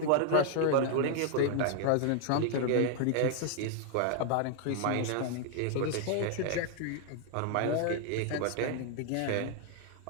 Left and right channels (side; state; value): both; different; correlation 0.00